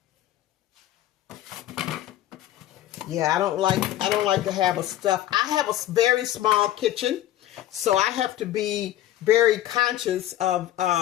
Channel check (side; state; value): right; quieter; 13.5 dB